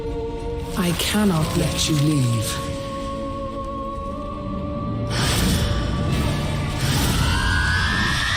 I cannot let you leave.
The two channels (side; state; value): both; identical; correlation 1.00